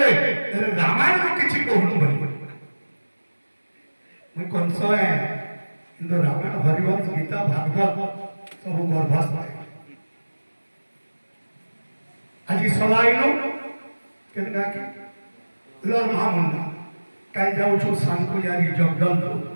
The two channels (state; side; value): inverted; both; correlation -1.00